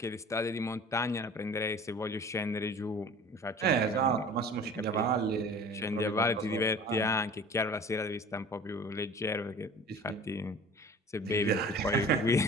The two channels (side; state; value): both; normal; correlation 0.43